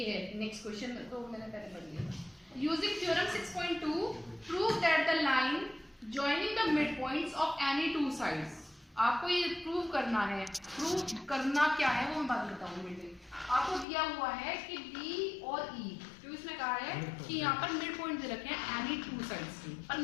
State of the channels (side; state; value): right; drops out; at 13.9 s